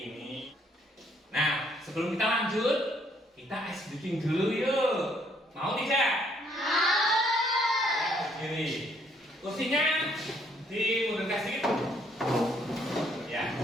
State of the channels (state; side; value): normal; both; correlation 0.67